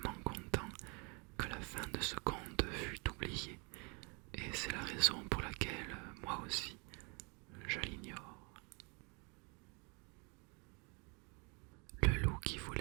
content que la fin de ce conte fut oubliée, et c'est la raison pour laquelle, moi aussi, je l'ignore. Le loup qui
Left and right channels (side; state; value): left; quieter; 32.2 dB